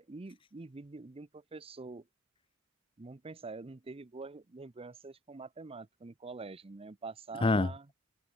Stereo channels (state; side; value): normal; both; correlation 0.60